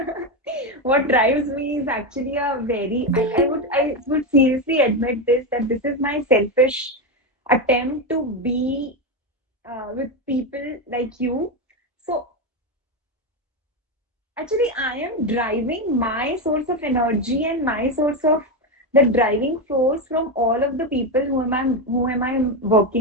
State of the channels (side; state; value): both; normal; correlation 0.11